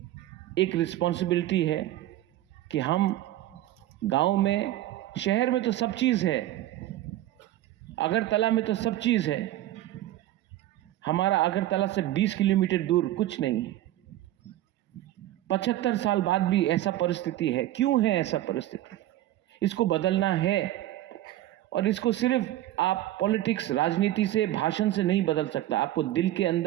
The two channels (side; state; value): left; quieter; 14.3 dB